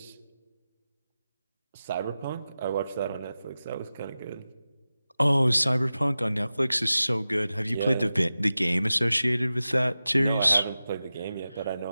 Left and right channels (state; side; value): inverted; both; correlation -0.94